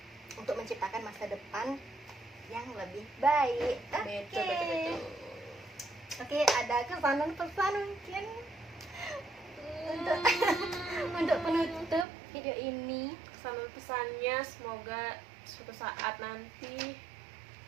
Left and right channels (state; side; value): drops out; left; at 12.1 s